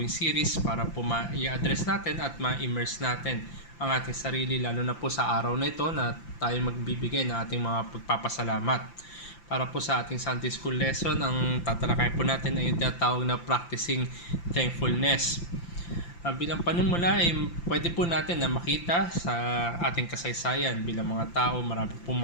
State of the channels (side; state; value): right; late; 5.8 ms